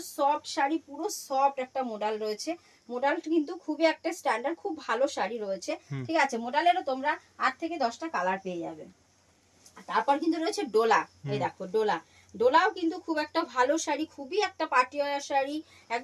সফট শাড়ি, পুরো সফট একটা মোডাল রয়েছে। মোডাল কিন্তু খুবই একটা স্ট্যান্ডার্ড, খুব ভালো শাড়ি রয়েছে। ঠিক আছে, মোডালেরও তোমরা 8 থেকে 10টা কালার পেয়ে যাবে। তারপর কিন্তু রয়েছে ডোলা, এই দেখো ডোলাও কিন্তু খুব একটা ভালো শাড়ি, খুবই একটা পাটিওয়ালা শাড়ি,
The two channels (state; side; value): identical; both; correlation 1.00